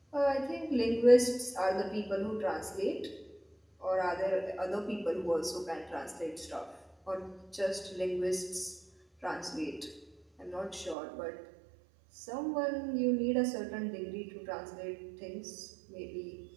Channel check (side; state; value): left; drops out; at 11.0 s